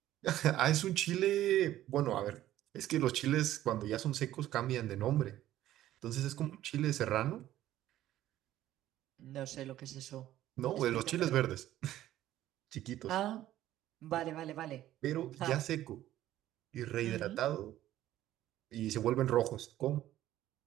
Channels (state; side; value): quieter; left; 13.6 dB